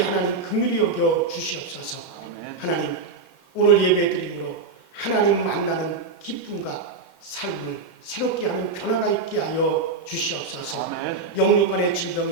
긍휼히 여겨 주시옵소서. 아멘. 하나님 오늘 예배드림으로 하나님 만나는 기쁨과 삶을 새롭게 하는 변화가 있게 하여 주시옵소서. 아멘. 영육간의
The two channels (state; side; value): quieter; left; 4.3 dB